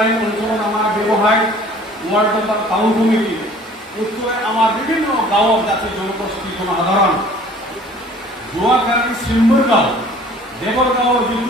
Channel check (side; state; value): both; normal; correlation 0.51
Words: অঞ্চলত আমাৰ ব্যৱসায় ৱাৰ্ড নম্বৰ টাউন কমিটি, উত্তৰে আমাৰ বিভিন্ন গাঁৱত যাতে জনগোষ্ঠী জনসাধাৰণ যোৱাকালি চিম্বৰগাঁও, দেৱৰগাঁৱৰ